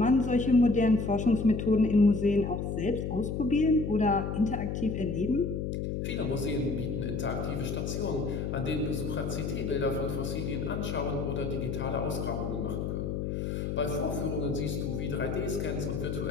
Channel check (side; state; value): left; noise; hum, 2 dB below the sound